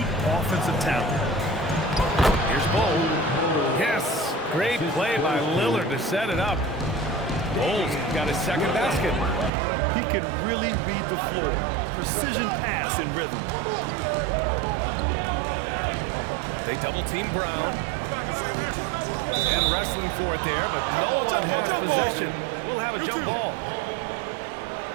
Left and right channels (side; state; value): left; drops out; at 9.5 s